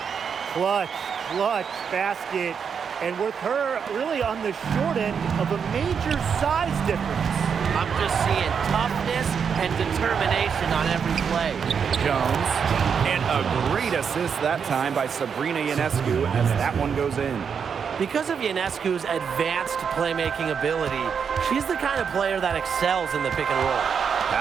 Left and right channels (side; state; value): left; quieter; 6.7 dB